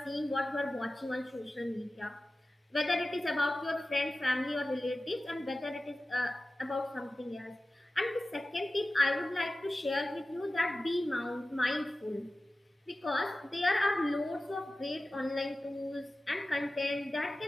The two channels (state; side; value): normal; both; correlation 0.96